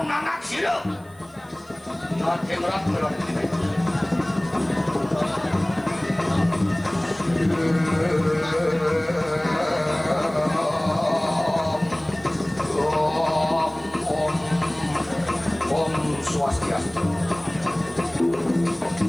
nangak sida. Nate merak merak. Om Swastiastu.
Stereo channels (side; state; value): right; noise; hiss, 29 dB below the sound